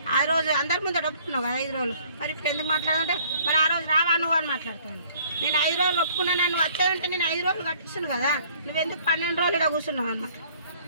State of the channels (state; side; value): inverted; both; correlation -0.58